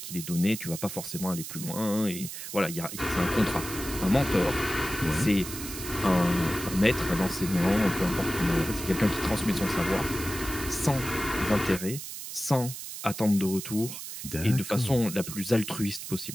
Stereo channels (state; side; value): noise; right; hiss, 9 dB below the sound